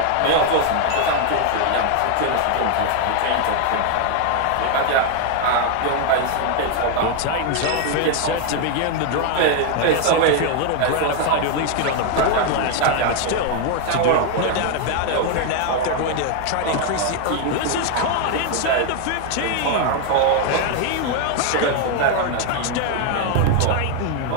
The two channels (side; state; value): both; different; correlation 0.00